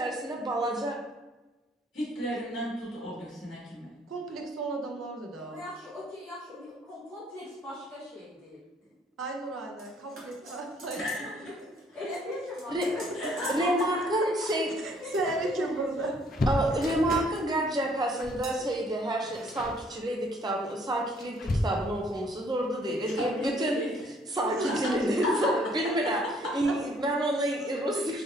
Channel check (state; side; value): normal; both; correlation 0.62